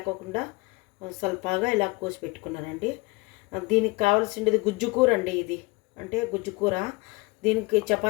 స్వల్పగా ఇలా కోసి పెట్టుకున్నానండి. దీనికి కావాల్సింది గుజ్జు కూర అండి. ఇది అంటే గుజ్జు కూర దీనికి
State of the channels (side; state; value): right; quieter; 25.4 dB